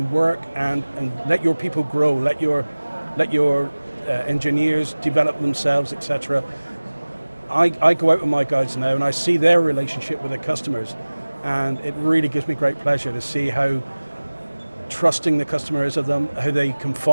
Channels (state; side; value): inverted; both; correlation -1.00